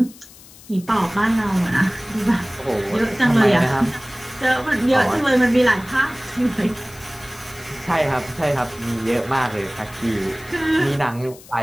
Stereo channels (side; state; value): left; noise; hiss, 21 dB below the sound